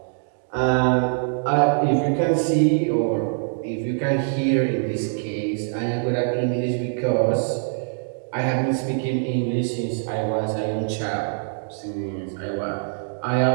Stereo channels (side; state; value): left; silent; digital silence